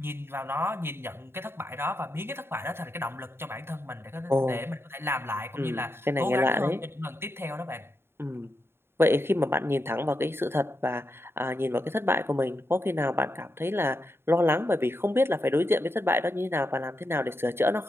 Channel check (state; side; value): late; left; 0.11 ms